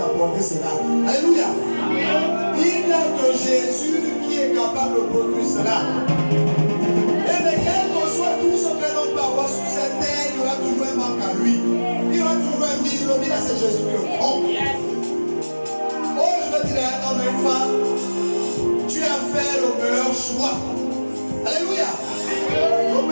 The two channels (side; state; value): both; inverted; correlation -1.00